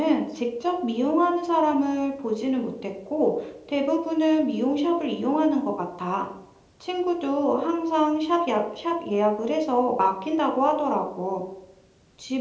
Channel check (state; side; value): identical; both; correlation 1.00